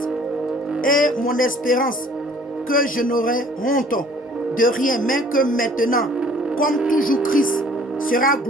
et mon espérance, que je n'aurai honte de rien, mais que maintenant, comme toujours Christ sera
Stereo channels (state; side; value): normal; both; correlation 0.54